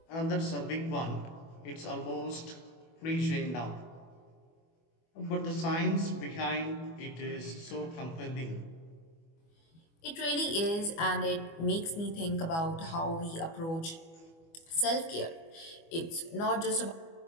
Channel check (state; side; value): late; right; 24 ms